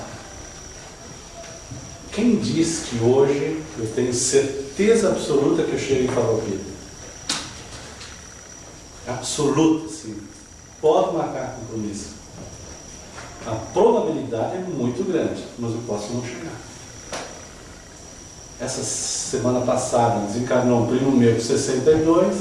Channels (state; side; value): identical; both; correlation 1.00